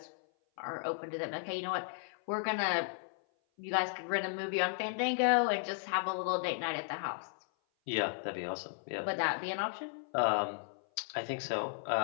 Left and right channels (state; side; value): silent; right; 54 dB below the other